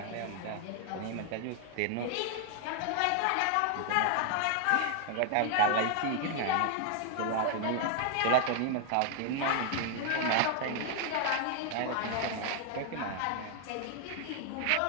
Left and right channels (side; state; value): both; different; correlation 0.00